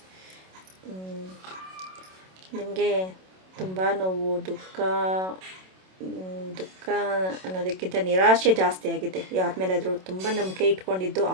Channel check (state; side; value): late; left; 27 ms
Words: ನಿಮಗೆ ತುಂಬ ನೋವು, ದುಃಖ ಅನ್ನೋದಕ್ಕಿಂತ ನಿರಾಶೆ ಜಾಸ್ತಿ ಆಗಿದೆ. ಯಾರ ಮೇಲಾದರೂ ತುಂಬ ನಂಬಿಕೆ ಇಟ್ಕೊಂಡಿದ್ದು